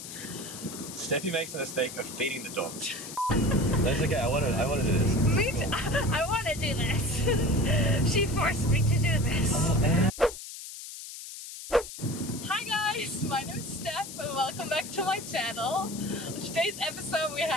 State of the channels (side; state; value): left; noise; hiss, 11 dB below the sound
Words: Steffi makes the mistake of feeding the dog. That's okay, I want to do this. Me too. I want to do this. She forced me to do this. Hi guys, my name is Steph and welcome back to my channel. On today's episode we